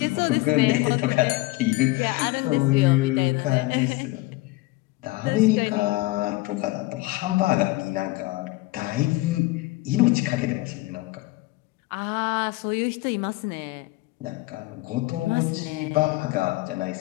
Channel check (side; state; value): right; quieter; 20.5 dB